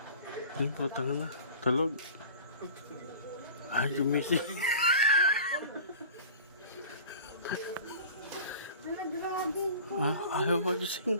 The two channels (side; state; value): both; inverted; correlation -0.41